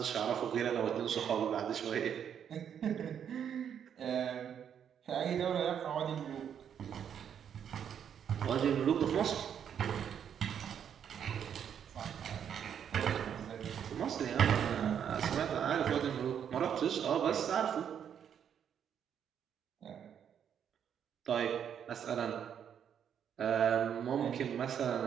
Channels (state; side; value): quieter; left; 8.5 dB